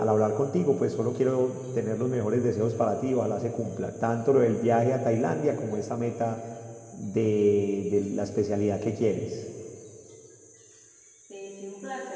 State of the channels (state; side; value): identical; both; correlation 1.00